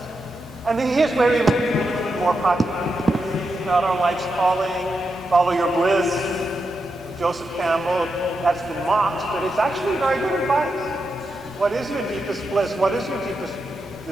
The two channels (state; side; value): normal; both; correlation 0.86